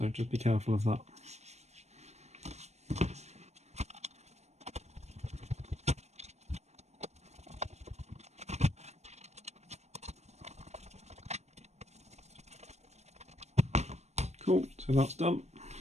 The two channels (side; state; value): left; late; 0.32 ms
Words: just be careful of that. Cool, so that's done.